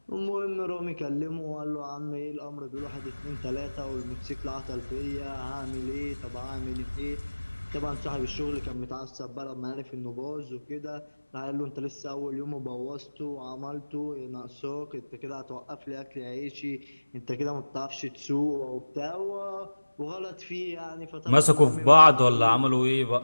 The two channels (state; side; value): inverted; both; correlation -1.00